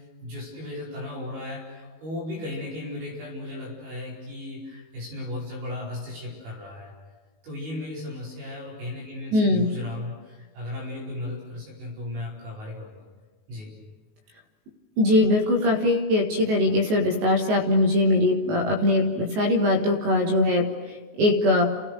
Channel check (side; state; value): left; late; 19 ms